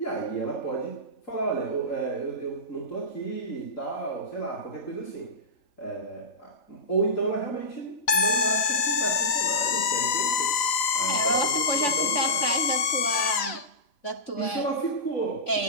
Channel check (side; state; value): right; late; 3.9 ms